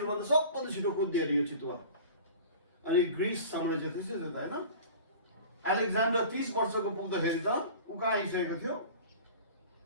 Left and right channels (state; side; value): inverted; both; correlation -0.40